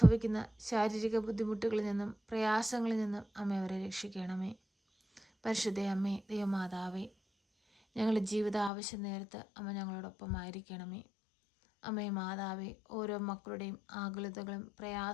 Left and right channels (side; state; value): right; drops out; at 8.7 s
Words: ശാരീരിക ബുദ്ധിമുട്ടുകളിൽ നിന്നും പ്രയാസങ്ങളിൽ നിന്നും അമ്മ അവരെ രക്ഷിക്കണമേ. പരിശുദ്ധയമ്മേ, ദൈവമാതാവേ, ഞങ്ങളുടെ ജീവിത ആവശ്യം നേരത്ത് അമ്മ ഞങ്ങളോടൊപ്പമായിരിക്കണമേ. അമ്മേ മാതാവേ, ഓരോ മക്കളുടെയും ആകുലതകളും